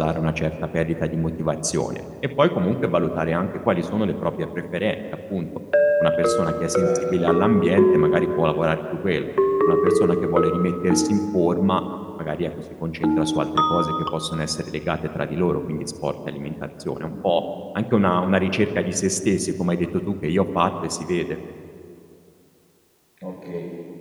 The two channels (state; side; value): identical; both; correlation 1.00